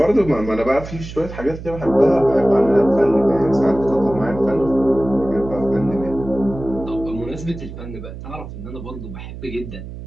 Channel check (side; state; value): right; noise; hum, 11 dB below the sound